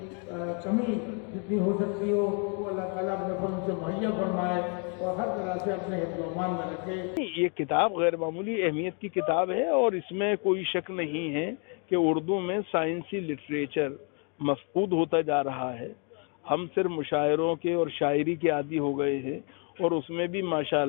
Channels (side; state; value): right; quieter; 38.6 dB